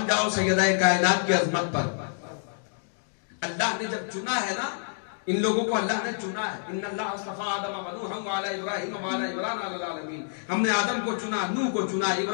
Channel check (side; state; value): right; silent; digital silence